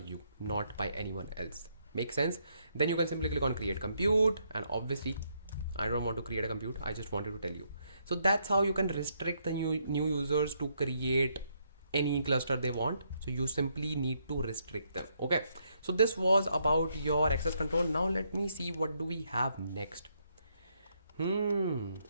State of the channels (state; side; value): inverted; both; correlation -0.75